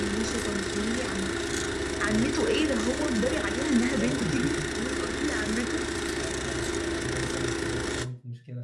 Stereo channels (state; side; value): identical; both; correlation 1.00